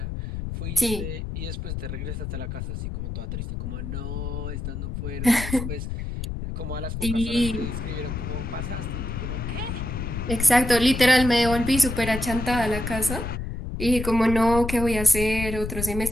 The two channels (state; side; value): noise; left; rumble, 5 dB below the sound